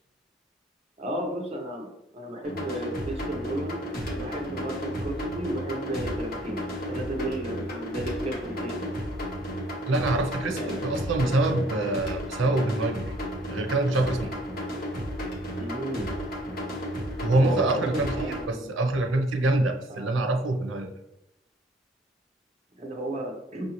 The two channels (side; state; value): both; normal; correlation 0.59